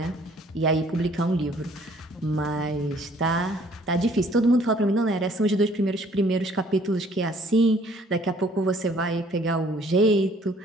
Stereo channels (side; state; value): both; normal; correlation 0.59